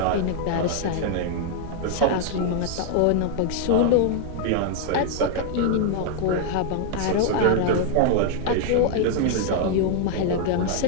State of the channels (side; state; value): both; different; correlation 0.00